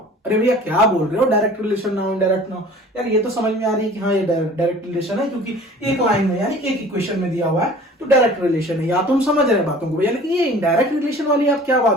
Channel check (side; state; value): both; normal; correlation 0.46